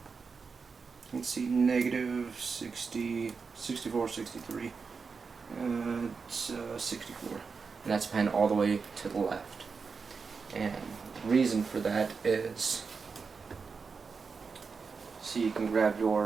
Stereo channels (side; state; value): left; quieter; 5.1 dB